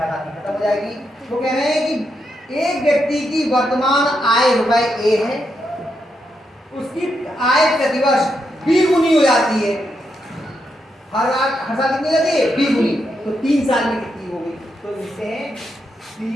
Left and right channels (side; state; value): both; normal; correlation 0.82